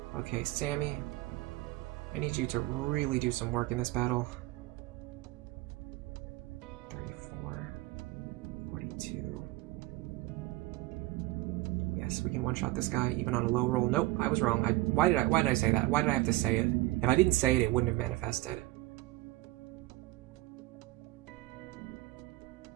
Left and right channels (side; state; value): left; quieter; 19.2 dB